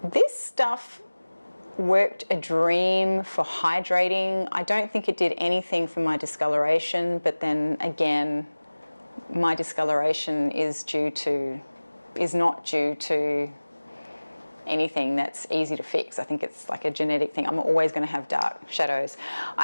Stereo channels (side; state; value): both; inverted; correlation -1.00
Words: This stuff worked a dream for hydrating. I don't think it did anything for my discoloration, but then again, my discoloration is due to is not due to anything that's easy to fix. I think it's like a genetic thing. I'm always going to have dark shadows.